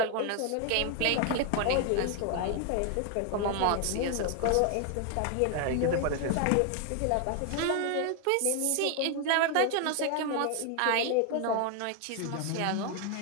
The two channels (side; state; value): both; different; correlation 0.01